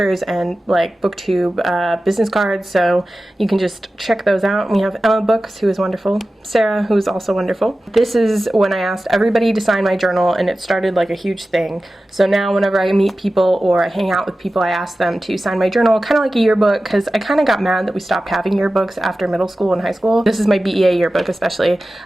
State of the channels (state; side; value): normal; both; correlation 0.95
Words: and like Booktube business cards, so you can just check those out. We have Emma Books, who is wonderful, Sarah, who is also wonderful. This is when I asked everybody to sign my journal, and it started like a huge thing. So now whenever I meet people or I hang out with people, I ask them to sign my journal, kind of like a yearbook, because I kind of got mad that we stopped having yearbooks after middle school and high school. This is my BEA yearbook especially.